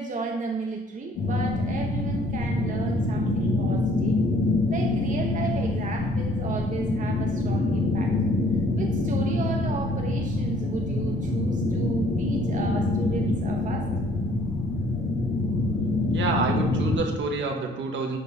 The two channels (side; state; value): both; normal; correlation 0.59